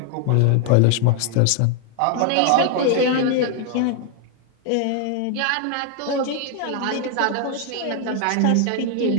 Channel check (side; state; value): both; different; correlation 0.00